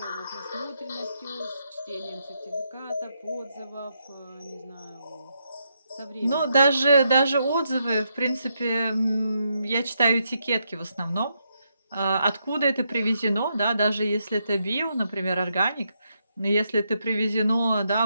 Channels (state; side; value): inverted; both; correlation -0.80